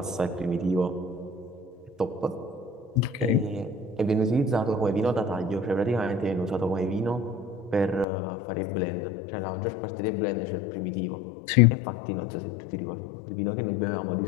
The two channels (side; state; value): right; drops out; at 8.1 s